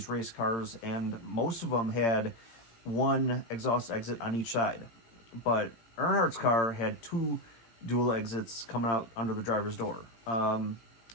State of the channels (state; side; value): late; right; 18 ms